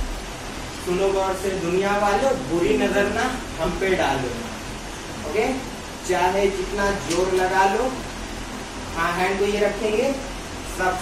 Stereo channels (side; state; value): both; identical; correlation 1.00